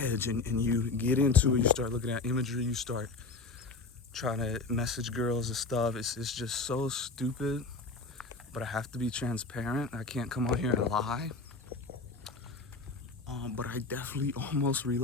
and you get into it, you start looking at imagery, you start trying to message girls and stuff. It's just so stupid, but I have to be transparent. I can't come on here and lie. But I definitely almost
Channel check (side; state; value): right; quieter; 3.9 dB